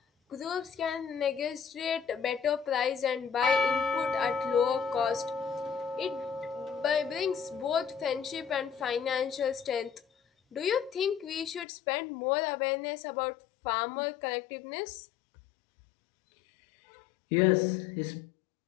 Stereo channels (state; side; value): drops out; right; at 11.7 s